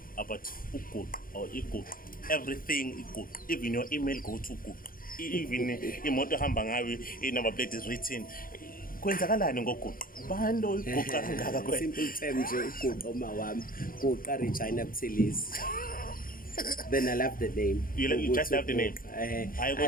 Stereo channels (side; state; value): right; late; 0.41 ms